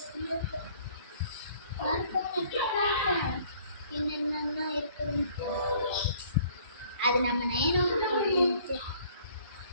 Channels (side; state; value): both; inverted; correlation -0.57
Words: என்னென்ன இருக்குதுன்னு அது நம்ம நேரம்